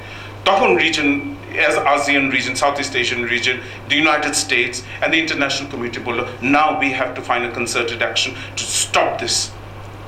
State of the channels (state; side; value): identical; both; correlation 1.00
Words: তখন region as ASEAN region, Southeast Asian region, the United States and the international community বলল, now we have to find a concerted action to stop this,